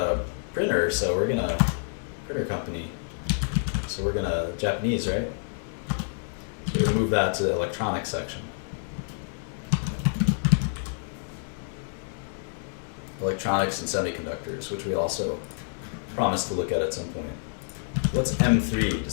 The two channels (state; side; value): silent; right; digital silence